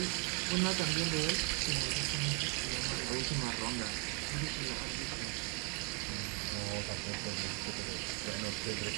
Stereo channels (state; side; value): quieter; left; 31.3 dB